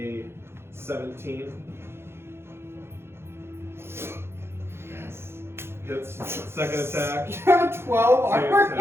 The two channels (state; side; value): late; left; 0.12 ms